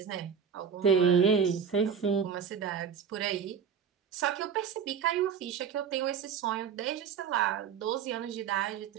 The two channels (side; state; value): left; quieter; 7.3 dB